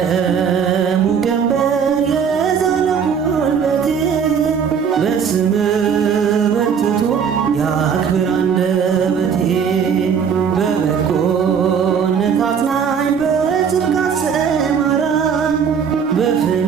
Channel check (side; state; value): left; quieter; 6.9 dB